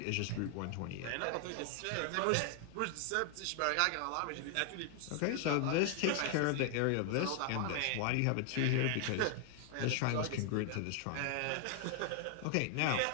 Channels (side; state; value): both; different; correlation 0.00